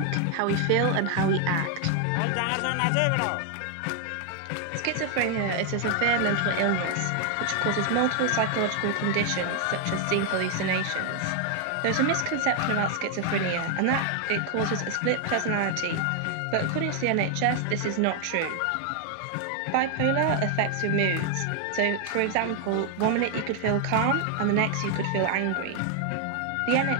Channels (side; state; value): both; different; correlation 0.00